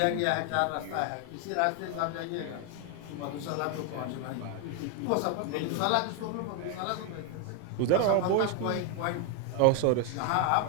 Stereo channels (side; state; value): both; different; correlation 0.01